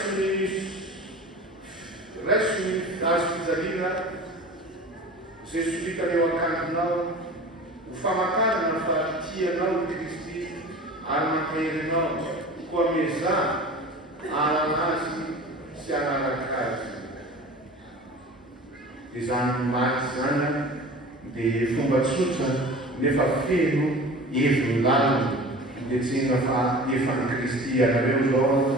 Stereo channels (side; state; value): both; normal; correlation 0.38